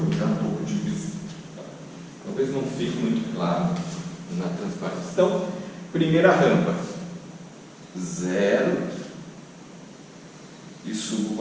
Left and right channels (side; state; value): both; identical; correlation 1.00